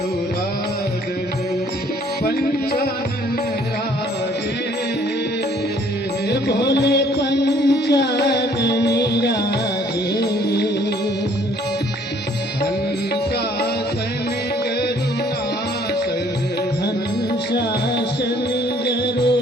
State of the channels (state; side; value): normal; both; correlation 0.60